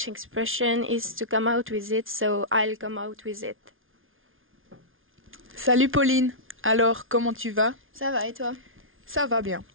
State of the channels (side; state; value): left; late; 0.59 ms